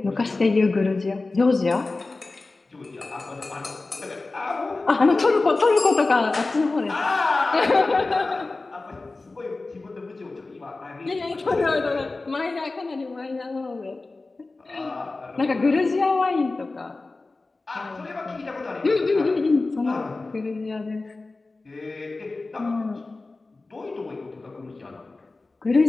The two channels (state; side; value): quieter; right; 3.4 dB